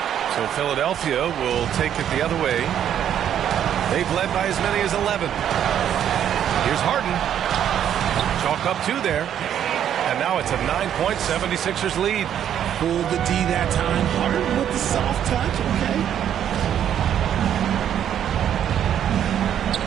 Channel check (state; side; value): quieter; left; 9.8 dB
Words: So Philadelphia will take it the other way. They've led by as many as 11. Here's Harden. Chalk up 2 there. And now it's a 9-point 76ers lead. Pulled the D that time. Harden with the soft touch, okay.